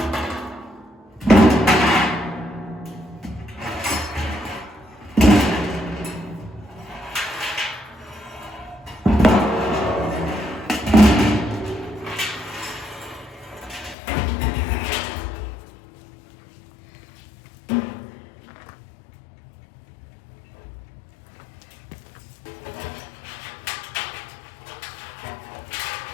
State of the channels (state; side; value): drops out; right; at 14.0 s